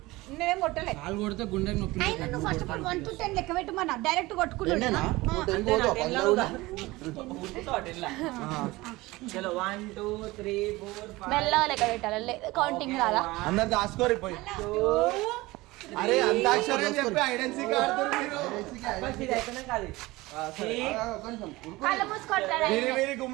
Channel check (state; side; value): quieter; left; 20.4 dB